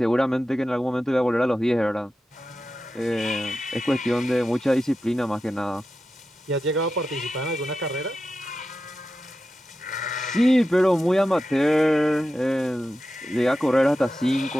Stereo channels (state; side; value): normal; both; correlation 0.91